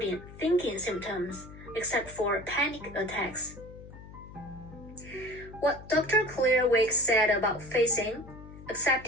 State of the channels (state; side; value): noise; left; hum, 16 dB below the sound